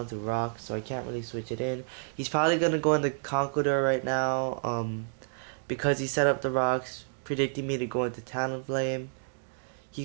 to rock, so I can't really switch it in. He's probably gonna go into Conqueror right now, because he set up the rocks, predicting me to go into Talonflame. He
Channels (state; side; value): silent; left; digital silence